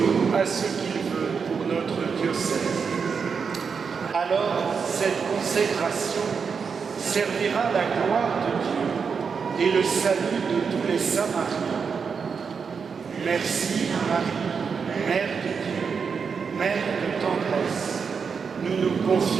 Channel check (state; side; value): quieter; left; 5.8 dB